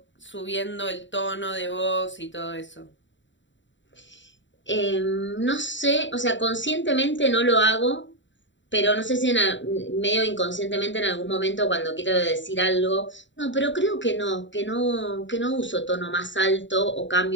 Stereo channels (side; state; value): right; late; 0.54 ms